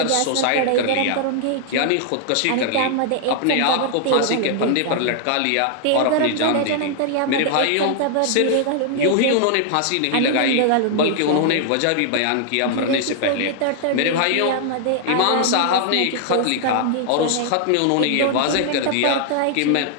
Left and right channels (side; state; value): both; different; correlation 0.00